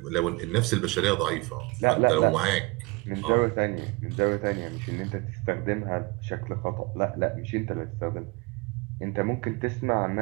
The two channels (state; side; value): quieter; left; 24.8 dB